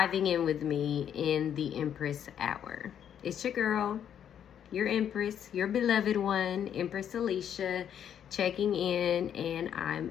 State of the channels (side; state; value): right; quieter; 9.2 dB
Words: in with me in the Empress Hour. It's your girl, your Empress, your beloved one, Empress Alicia, checking in, and I'm